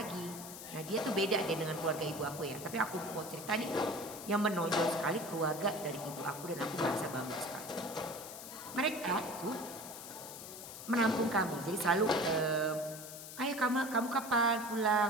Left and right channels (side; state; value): left; noise; hiss, 12 dB below the sound